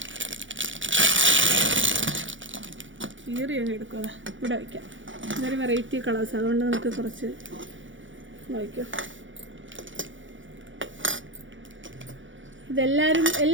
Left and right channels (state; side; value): late; left; 0.56 ms